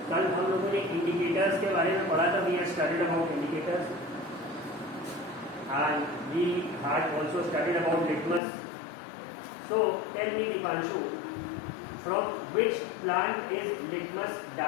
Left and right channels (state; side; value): drops out; right; at 8.4 s